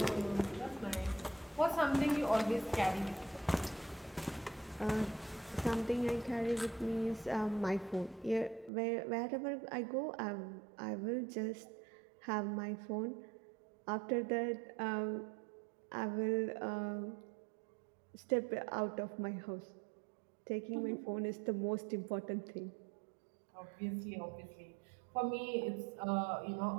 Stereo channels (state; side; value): drops out; left; at 8.7 s